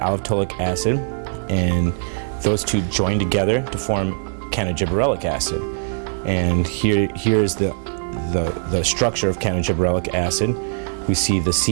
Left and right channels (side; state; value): left; silent; 59 dB below the other